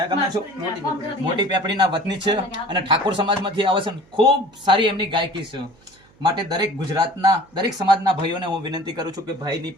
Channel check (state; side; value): noise; right; hum, 30 dB below the sound